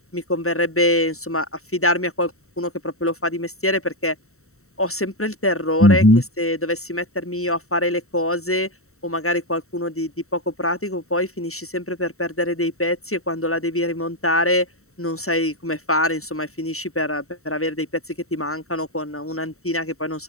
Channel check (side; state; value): right; late; 0.64 ms